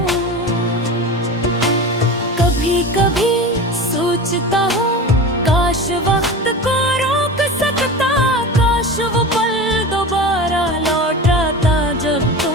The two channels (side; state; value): both; normal; correlation 0.30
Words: कभी सोचता हूँ काश वक्त को रोक सकता, काश वो पल दोबारा लौट आता जब